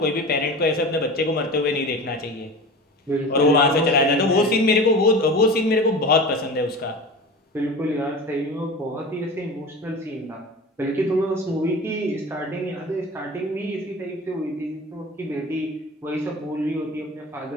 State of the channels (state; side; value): normal; both; correlation 0.33